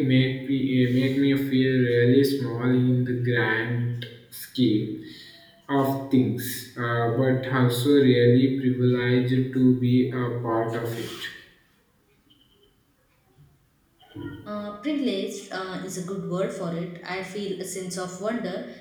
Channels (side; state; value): both; identical; correlation 1.00